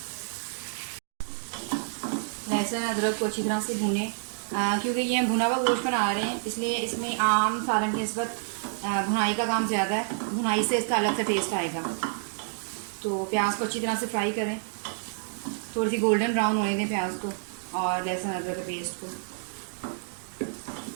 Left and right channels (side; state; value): left; silent; digital silence